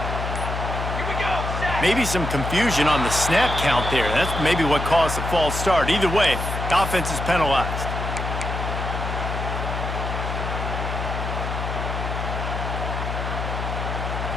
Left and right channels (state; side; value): noise; left; hum, 4 dB below the sound